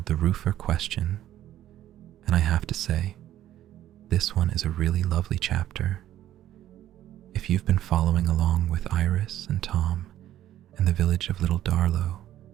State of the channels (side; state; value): left; quieter; 12.6 dB